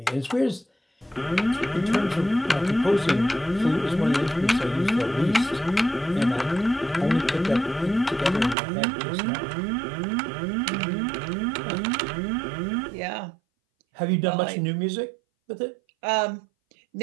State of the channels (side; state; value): left; drops out; at 8.6 s